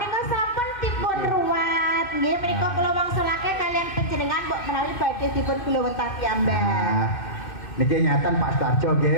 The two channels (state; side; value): late; right; 2.6 ms